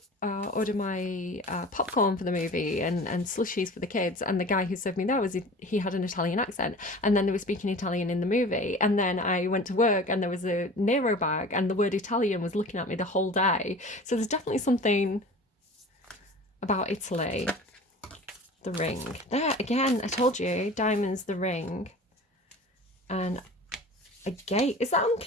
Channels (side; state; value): both; normal; correlation 0.39